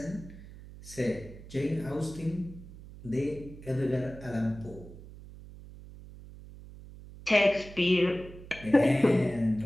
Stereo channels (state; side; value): noise; right; hum, 16 dB below the sound